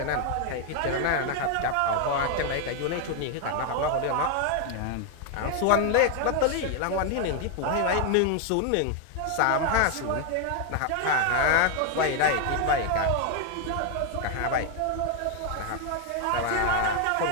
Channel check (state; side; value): different; both; correlation 0.01